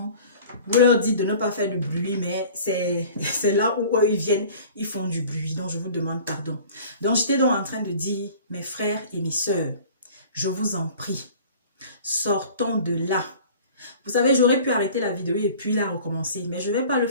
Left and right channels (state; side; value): inverted; both; correlation -0.45